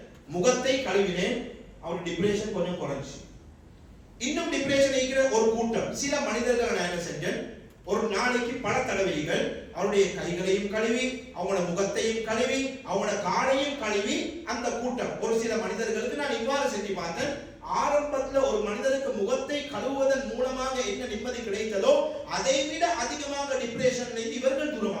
முகத்தை கழுவினேன். அவர் டிப்ரெஷன் கொஞ்சம் குறைஞ்சி. இன்னும் டிப்ரெஷன் இருக்கிற ஒரு கூட்டம் சில மனிதர்கள் நான் என்ன செஞ்சேன், ஒரு நாளைக்கு பல தடவைகள் அவருடைய கைகளையும் கழுவி, அவங்களோட முகத்தையும் கழுவி, அவங்களோட காலையும் கழுவி, அந்த கூட்டம் ஒரு சில மனிதர்களுக்கு நான் இவ்வாறு செஞ்சு பார்த்தேன். ஆரம்பத்தில் ஒரு மனிதருக்கு முகத்தை கழுவுவதன் மூலமாக என்ன நிம்மதி கிடைத்ததோ அதை விட அதிகமாக டிப்ரெஷன்ல இவர்கள்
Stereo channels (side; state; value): both; identical; correlation 1.00